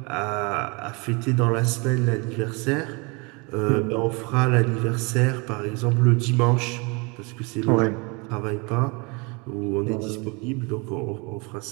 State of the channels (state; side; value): quieter; left; 29.5 dB